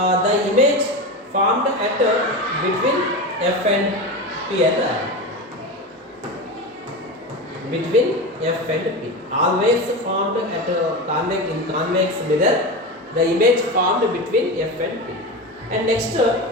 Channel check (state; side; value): normal; both; correlation 0.22